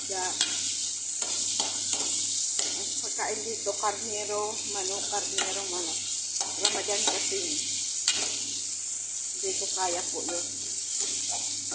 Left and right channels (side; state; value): both; identical; correlation 1.00